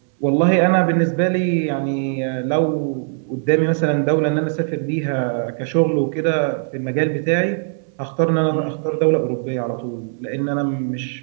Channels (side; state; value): left; silent; digital silence